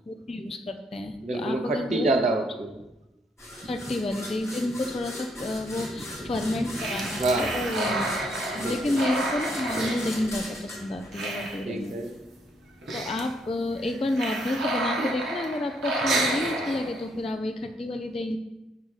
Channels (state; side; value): normal; both; correlation 0.72